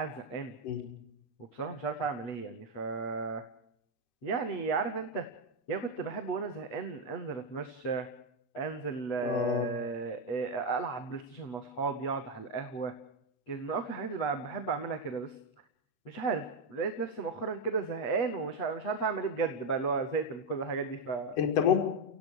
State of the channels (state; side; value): late; right; 8.3 ms